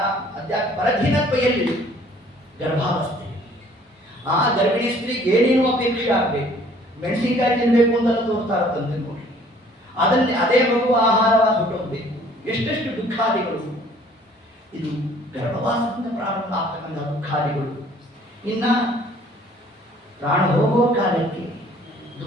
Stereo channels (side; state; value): both; normal; correlation 0.56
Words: ಪರಧೀನತ್ವ ಎಲ್ಲಿ, ಗರ್ಭಾವಸ್ಥೆ. ಆ ಗರ್ಭಿಣಿ ಸ್ತ್ರೀಗೆ ಏನೇನು ಅಪೇಕ್ಷೆ ಆಗಬೇಕು, ಮೆಣಸಿನಕಾಯಿ ತಿನ್ಬೇಕು ಅಂತೆಲ್ಲ ತೋರ್ತಾ ಇರ್ತಂತೆ ನೋಡಿ. ಅದನ್ನೇ ಅದೇ ಮಗು ಆಹಾರವಾಗಿ ಹೊಟ್ಟೋಗ್ಬೇಕು. ಎಷ್ಟೆಷ್ಟು ದುಃಖಾದಿಗಳು, ಇದು ಗರ್ಭವಾಸದಿಂದ ಪ್ರಾರಂಭ ಆಗ್ತಕ್ಕಂಥ ದುಃಖಾದಿಗಳು. ಇನ್ನ ಪ್ರಾಣ ಹೋಗುವ ಕಾಲಕ್ಕೆ